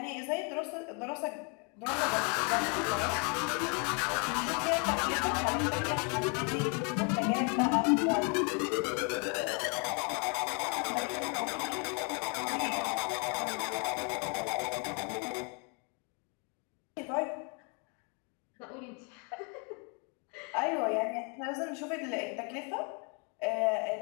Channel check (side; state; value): right; quieter; 35.5 dB